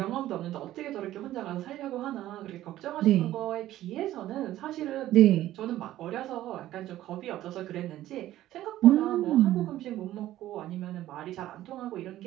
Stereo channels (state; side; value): quieter; left; 14.1 dB